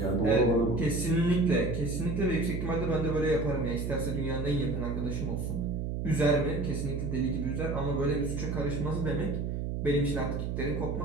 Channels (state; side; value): noise; right; hum, 2 dB below the sound